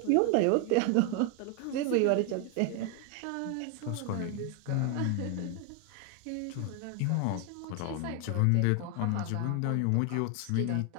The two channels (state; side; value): different; both; correlation 0.01